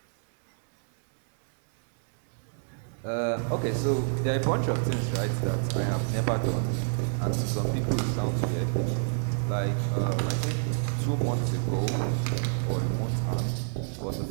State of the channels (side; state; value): left; silent; digital silence